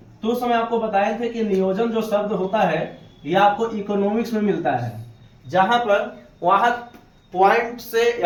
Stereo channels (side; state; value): both; identical; correlation 1.00